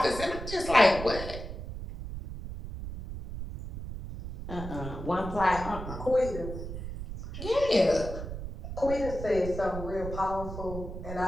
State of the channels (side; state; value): right; noise; rumble, 8 dB below the sound